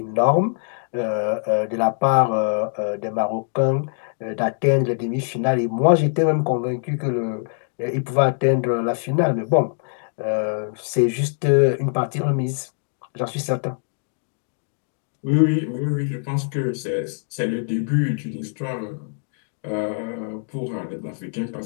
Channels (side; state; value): right; silent; 63 dB below the other